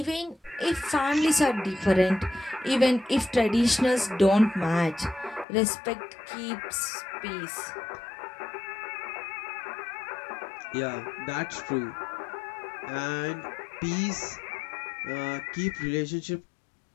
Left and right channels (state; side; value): drops out; right; at 5.5 s